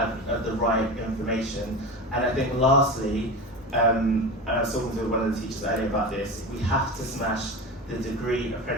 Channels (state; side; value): normal; both; correlation 0.27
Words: the right information. And I think lastly, and I was talking to one of the teachers earlier about this, we have to smash the degree